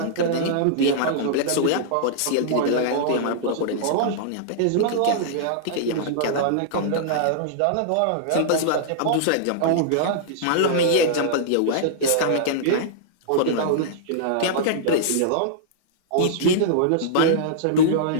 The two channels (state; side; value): different; both; correlation -0.02